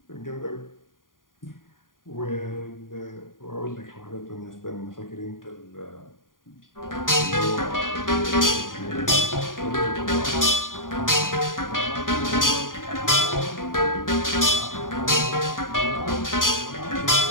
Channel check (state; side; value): late; right; 0.90 ms